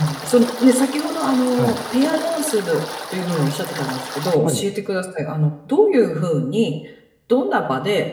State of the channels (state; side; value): identical; both; correlation 1.00